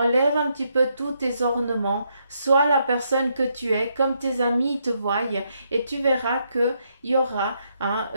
un petit peu tous tes ornements, sois la personne que tu es, comme tes amis te voient, et tu verras que il y aura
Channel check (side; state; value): both; inverted; correlation -0.77